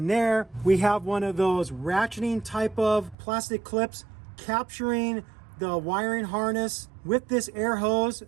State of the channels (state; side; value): drops out; left; at 3.2 s